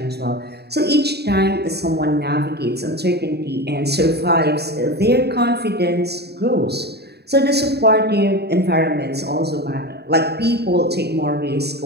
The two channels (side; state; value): left; late; 0.48 ms